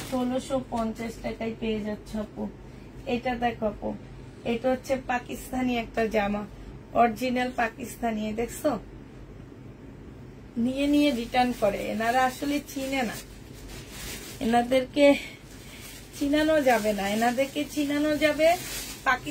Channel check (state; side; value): identical; both; correlation 1.00